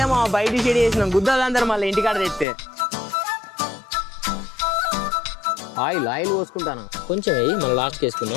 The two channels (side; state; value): right; drops out; at 2.5 s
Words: బయట షెడ్ చేసినాం గుద్దలందరూ మళ్ళీ ఇంటికాడ తెస్తే ఆయిల్ పోసుకుంటాను కొంచెం వేయి మళ్ళీ లాస్ట్కి